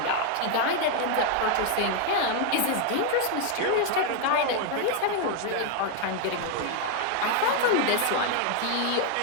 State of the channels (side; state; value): both; different; correlation 0.00